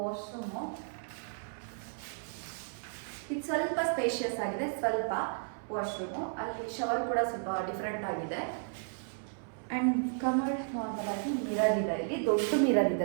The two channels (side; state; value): left; silent; 55 dB below the other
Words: ಇದು ಸ್ವಲ್ಪ ಸ್ಪೇಷಿಯಸ್ ಆಗಿದೆ, ಸ್ವಲ್ಪ ವಾಶ್ರೂಮು. ಅಲ್ಲಿ ಶವರ್ ಕೂಡ ಸ್ವಲ್ಪ ಡಿಫ್ರೆಂಟ್ ಆಗಿದೆ. ಆ್ಯಂಡ್ ಕಮರ್ಡ್ ನಾರ್ಮಲ್ ಆಗಿ ಮಿರರ್ ಇದೆ, ಇಲ್ಲಿ ದೊಡ್ಡ ಮಿರರ್